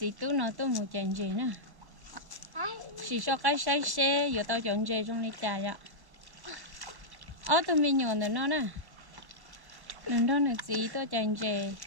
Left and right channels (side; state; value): left; late; 1.1 ms